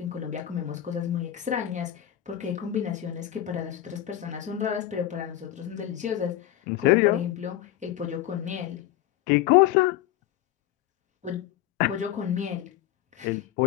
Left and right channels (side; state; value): right; quieter; 12.7 dB